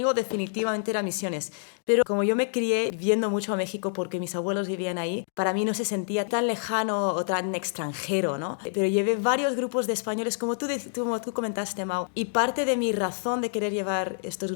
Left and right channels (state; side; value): silent; right; digital silence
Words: definitivamente era misiones. Pero como yo me crié viendo mucho a México porque mis abuelos vivían ahí, para mí no se sentía tan lejano o tan extranjero, ¿no? Pero llevé varios grupos de españoles, como tú comentaste, Mau. Y parte de mi razón de querer llevar estos